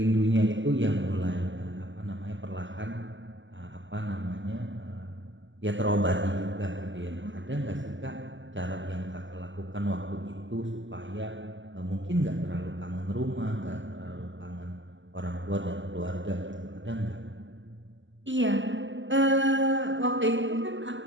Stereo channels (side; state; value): left; late; 0.54 ms